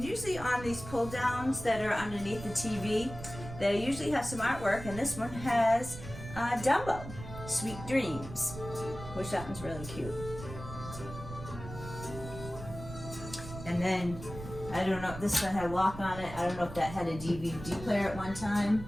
usually on these pull downs that are underneath the TV, they usually have some artwork, and this one has Dumbo, Sweet Dreams, which that one's really cute. And then, I don't know, this one had lock on it. I don't know if that had a DVD player at one time.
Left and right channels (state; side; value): noise; right; rumble, 12 dB below the sound